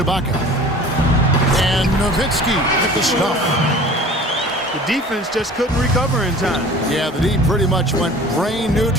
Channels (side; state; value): both; normal; correlation 0.43